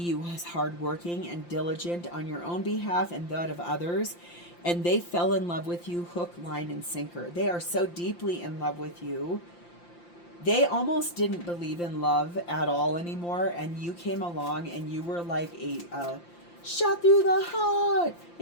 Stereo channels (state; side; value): late; right; 5.8 ms